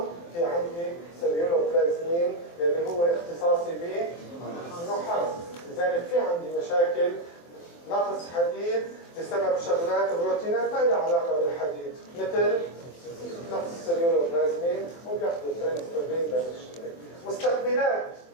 في عندي سيلولوبلازمين اللي هو اختصاصي بالنحاس. لذلك في عندي مشاكل نقص حديد بسبب شغلات بروتينات ما لها علاقه بالحديد مثل نقص السيلولوبلازمين وبياخذوا الترانسفيرين بالشيء. مستقبلات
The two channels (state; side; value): late; right; 23 ms